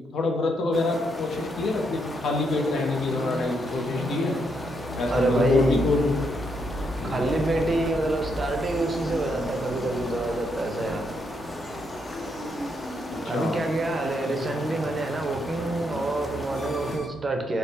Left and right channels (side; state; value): both; normal; correlation 0.77